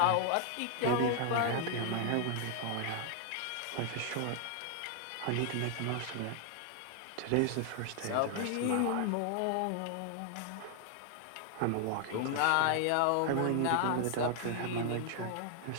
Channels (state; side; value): different; both; correlation 0.00